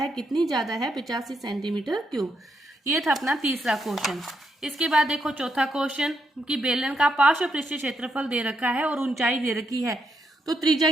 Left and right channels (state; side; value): normal; both; correlation 0.79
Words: कितनी ज्यादा है 85 सेंटीमीटर क्यूब। ये था अपना तीसरा क्वेश्चन। इसके बाद देखो चौथा क्वेश्चन कि बेलन का पार्श्व पृष्ठीय क्षेत्रफल दे रखा है और ऊंचाई दे रखी है, तो त्रिज्या